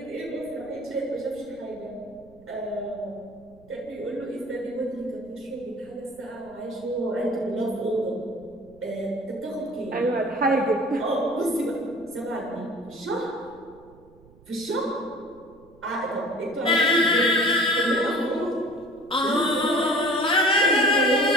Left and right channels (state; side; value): noise; right; rumble, 26 dB below the sound